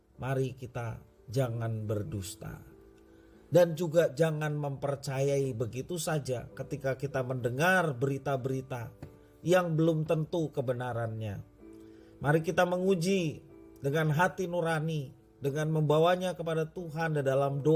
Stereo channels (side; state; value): both; identical; correlation 1.00